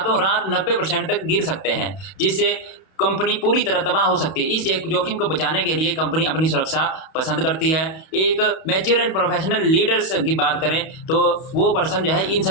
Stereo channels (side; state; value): right; late; 31 ms